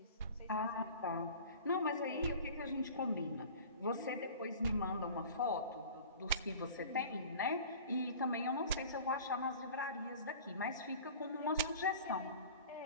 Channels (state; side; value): inverted; both; correlation -0.42